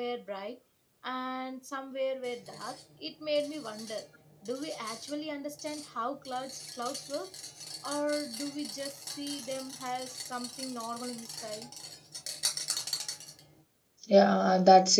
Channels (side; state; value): both; identical; correlation 1.00